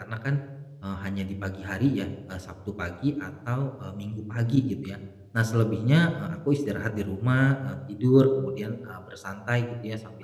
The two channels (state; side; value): identical; both; correlation 1.00